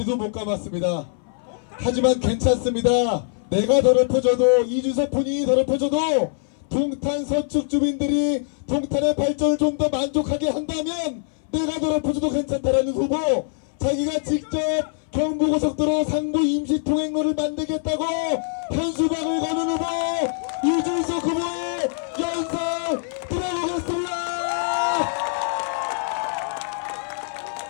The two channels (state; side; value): silent; right; 59 dB below the other